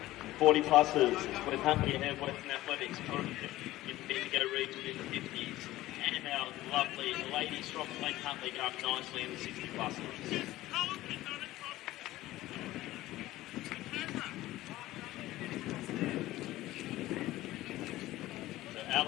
40 pluses with Huntley and Western Athletics in the Bendigo region in the 50s. And our lovely lady strong Glen Huntley going nicely in the 60 pluses. So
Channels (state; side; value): quieter; right; 16.4 dB